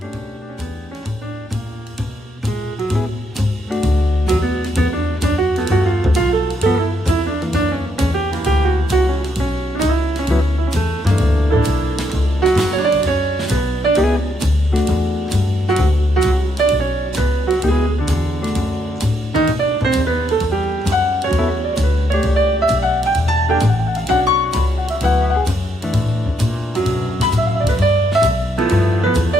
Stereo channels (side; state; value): both; normal; correlation 0.76